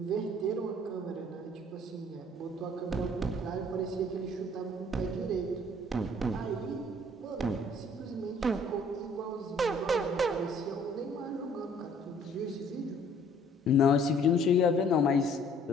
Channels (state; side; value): normal; both; correlation 0.58